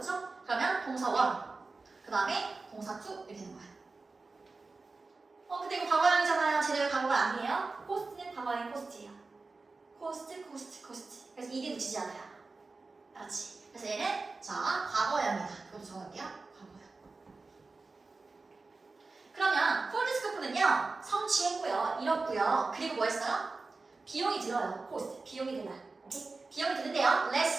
그러면 동사 1, 그 다음에 동사 2 이렇게 되는 거예요. 근데 이거 과거형이잖아요. 제대로 과거가 아니에요. 포스트는 과거형 포스트예요. 코스트. 그래서 이게 붙이지 않아요. 알았지? 그래서 얘는 자, 과거형이다. 그것도 정할게요. 과거형. 그러면 폴드스코프는요, 성취했고요, 이뤘고요. 그리고 뭐 했어요? 비용이 들어요. 코스트. 비용이 들어요. 오케이? 비용이 드는데요.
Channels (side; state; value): left; quieter; 3.8 dB